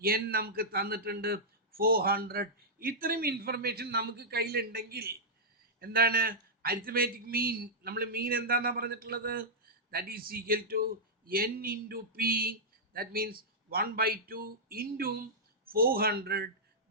എൻ നമുക്ക് തന്നിട്ടുണ്ട് 400. ഇത്രയും ഇൻഫർമേഷൻ നമുക്ക് കയ്യിലുണ്ടെങ്കിൽ എന്താണ് അരിത്തമാറ്റിക് മീൻ? നമ്മൾ മീൻ എന്താണെന്നാണ് പറഞ്ഞിട്ടുള്ളത്? That is equal to n into P, that means 1/2 into 400,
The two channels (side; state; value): both; normal; correlation -0.10